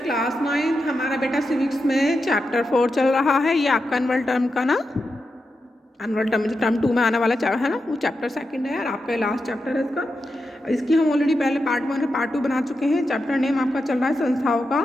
9 हमारा बेटा civics में चैप्टर 4 चल रहा है। ये आपका एनुअल टर्म का ना एनुअल टर्म जो टर्म 2 में आने वाला है ना, वो चैप्टर 2 है और आपका लास्ट चैप्टर है इसका। इसकी हम ऑलरेडी पहले पार्ट 1 और पार्ट 2 बना चुके हैं। चैप्टर नेम आपका चल रहा है संस्थाओं का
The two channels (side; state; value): both; normal; correlation 0.88